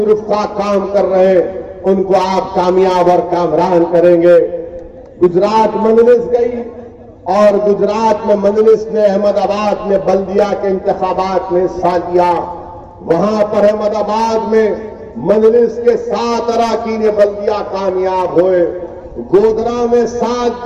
رفقا کام کر رہے ہیں ان کو آپ کامیاب اور کامران کریں گے۔ گجرات مجلس گئی اور گجرات میں مجلس نے احمد آباد میں بلدیہ کے انتخابات میں حصہ لیا، وہاں پر احمد آباد میں مجلس کے 7 اراکین بلدیہ کامیاب ہوئے، گودرا میں 7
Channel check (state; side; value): identical; both; correlation 1.00